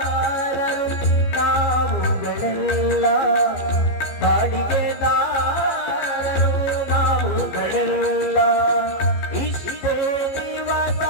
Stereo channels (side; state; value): right; late; 15 ms